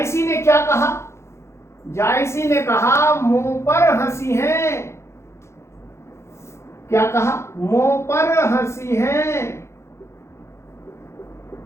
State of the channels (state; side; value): late; right; 0.13 ms